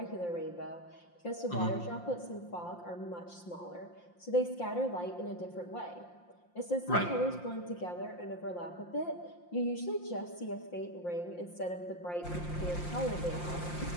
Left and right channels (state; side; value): late; right; 5.7 ms